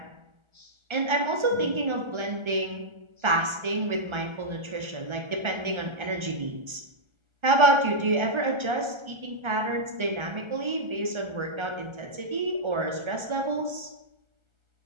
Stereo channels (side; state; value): left; late; 1.3 ms